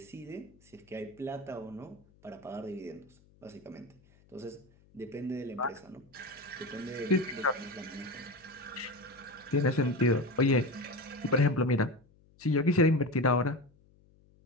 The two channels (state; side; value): noise; left; hum, 29 dB below the sound